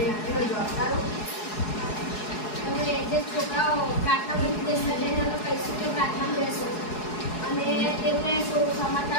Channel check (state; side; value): late; right; 4.7 ms